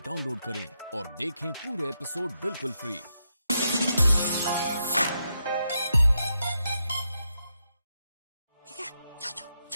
डाउनलोड करें और देखें पूरे एपिसोड बिल्कुल फ्री। ठीक है, जाओ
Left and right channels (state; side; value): inverted; both; correlation -0.84